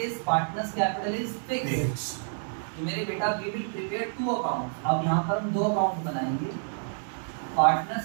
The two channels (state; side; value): silent; left; 59 dB below the other